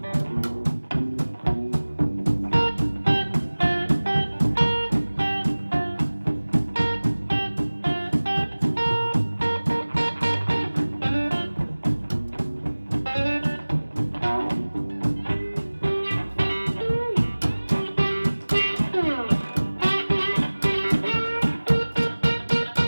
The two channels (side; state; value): both; inverted; correlation -1.00